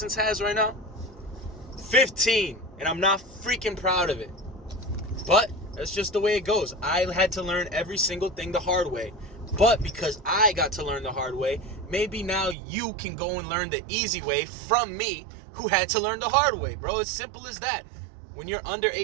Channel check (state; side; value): drops out; left; at 12.6 s